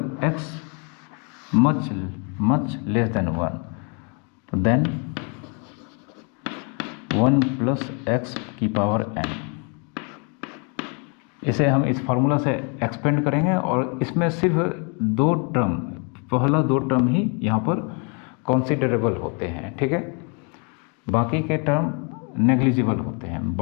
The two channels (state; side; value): quieter; right; 35.7 dB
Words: x मच लेस देन 1, तो देन 1 + x⁴n, इसे हम इस फार्मूला से एक्सपेंड करेंगे, और इसमें सिर्फ 2 टर्म, पहला 2 टर्म ही यहाँ पर कंसीडरेबल होते हैं, ठीक है, बाकी के टर्म नेग्लिजिबल होते हैं।